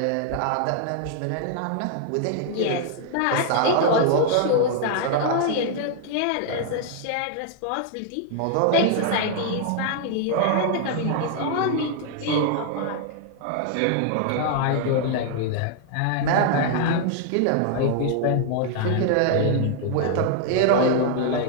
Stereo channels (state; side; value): different; both; correlation 0.00